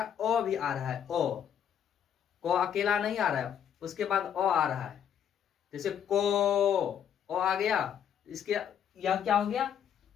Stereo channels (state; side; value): quieter; right; 8.8 dB